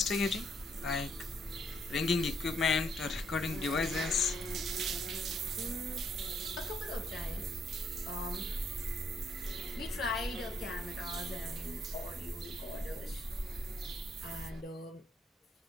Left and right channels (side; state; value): both; normal; correlation 0.72